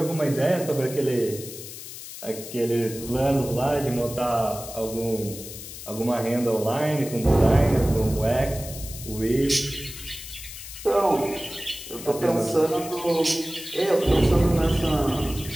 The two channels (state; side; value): noise; left; hiss, 12 dB below the sound